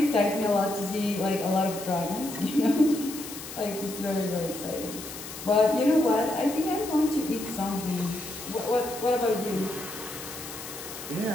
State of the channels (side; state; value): left; noise; hiss, 11 dB below the sound